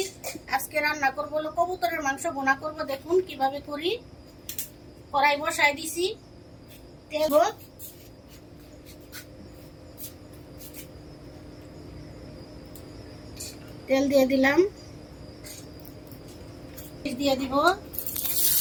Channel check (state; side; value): identical; both; correlation 1.00